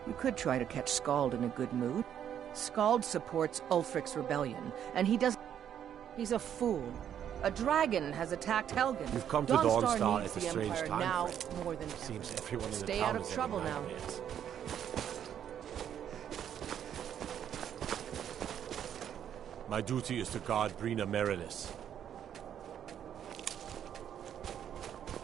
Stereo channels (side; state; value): left; quieter; 9.5 dB